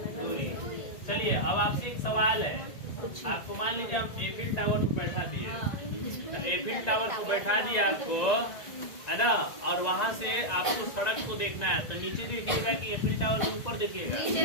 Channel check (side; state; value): right; late; 1.9 ms